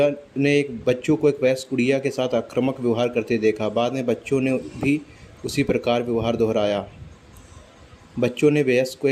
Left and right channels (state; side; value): identical; both; correlation 1.00